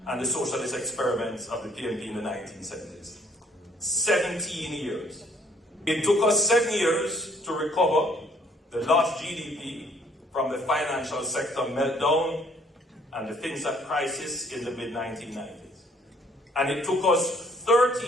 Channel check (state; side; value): normal; both; correlation 0.63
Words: and the socialist experiments of the PNP in the 1970s. 17 years. It took us 7 years to recover the lost GDP from the financial sector meltdown and the FinSat crisis in the mid-1990s. And it took us